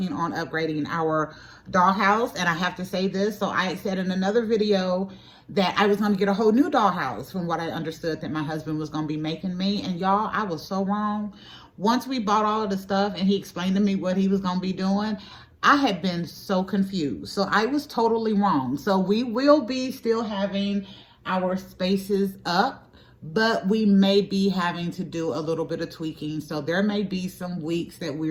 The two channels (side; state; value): both; identical; correlation 1.00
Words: on upgrading our dollhouse. And I have to say this. So I said in another video that I was going to get a whole new dollhouse from what I understood that my husband was going to be making me. And y'all, I was so wrong. Once we bought all of the stuff and he explained to me what he was going to be doing, I had been so confused. So I was totally wrong. So we will be still having our spaces up, but we may be having to do a little bit of tweaking. So there may be some weeks that